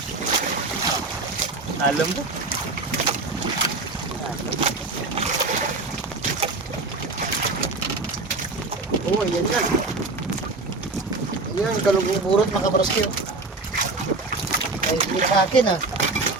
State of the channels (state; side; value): quieter; left; 3.5 dB